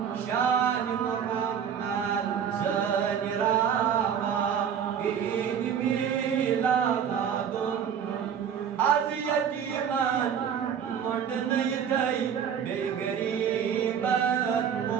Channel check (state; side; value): quieter; left; 8.0 dB